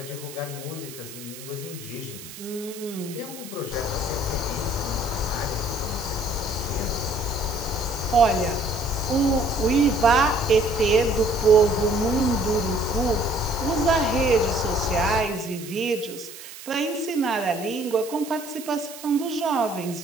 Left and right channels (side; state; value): right; noise; hiss, 14 dB below the sound